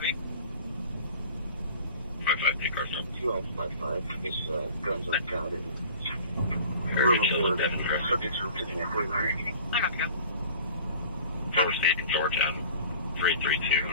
me. 55, take car stop. 2555. It's guns on county. Subjects are taking out 49. I got to go. Cover State, Georgia, 332.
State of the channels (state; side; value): inverted; both; correlation -0.45